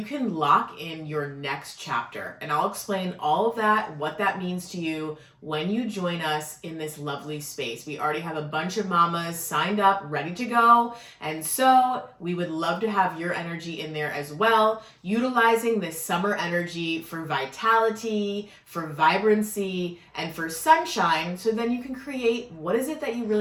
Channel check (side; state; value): both; identical; correlation 1.00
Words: can lock in your next chapter. And I'll explain all of that, what that means to you when you join us in this lovely space. We already have a bunch of mamas signed up, ready to go. And so we would love to have your energy in there as well, utilizing this summer energy for vitality, for vibrancy, and for sunshine, so then you can create what is it that you